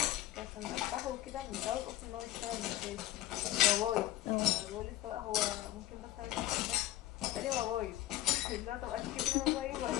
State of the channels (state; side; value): quieter; right; 15.2 dB